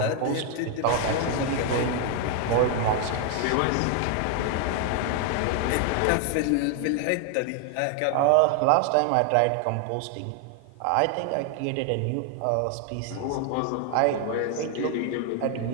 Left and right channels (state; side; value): different; both; correlation 0.00